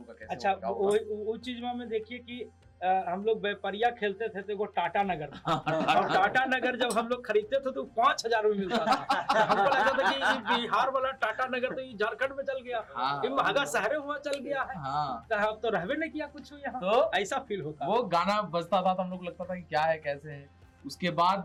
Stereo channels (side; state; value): both; identical; correlation 1.00